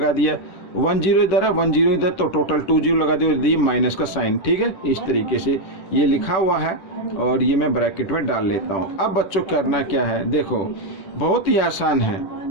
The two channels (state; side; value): late; right; 10 ms